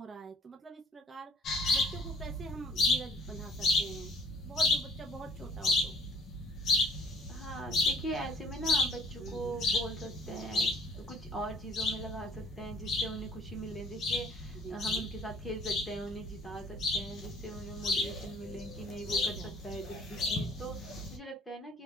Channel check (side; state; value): both; normal; correlation 0.55